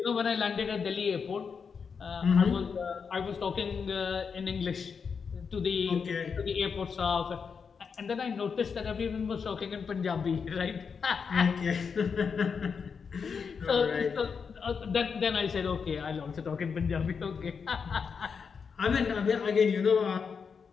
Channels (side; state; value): right; quieter; 5.9 dB